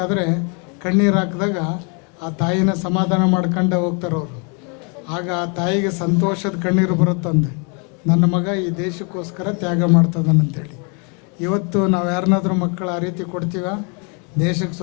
ಕಣ್ಣೀರು ಹಾಕಿದಾಗ ಆ ತಾಯಿನ ಸಮಾಧಾನ ಮಾಡ್ಕೊಂಡೇ ಹೋಗ್ತಾರೆ ಅವರು. ಆಗ ಆ ತಾಯಿಗೆ ಸಂತೋಷದ ಕಣ್ಣೀರು ಬರುತ್ತಂದೆ, ನನ್ನ ಮಗ ಈ ದೇಶಕ್ಕೋಸ್ಕರ ತ್ಯಾಗ ಮಾಡ್ತದನಂತೇಳಿ. ಇವತ್ತು ನಾವು ಯಾರನ್ನಾದ್ರೂ ಮಕ್ಕಳು ಆ ರೀತಿ ಕೊಡ್ತೀವ? ದೇಶಕ್ಕೆ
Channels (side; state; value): right; quieter; 35.8 dB